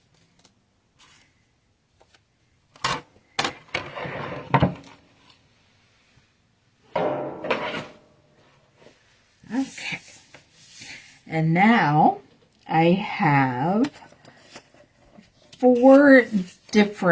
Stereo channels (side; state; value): both; identical; correlation 1.00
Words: Okay. And now I have 4